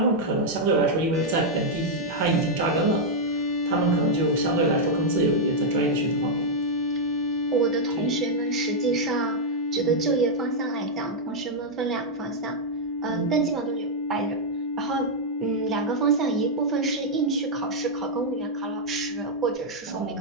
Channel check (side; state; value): both; normal; correlation -0.04